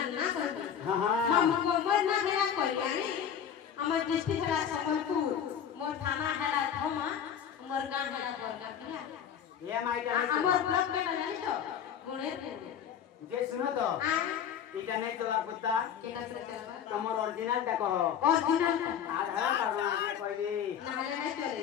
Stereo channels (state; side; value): quieter; right; 8.5 dB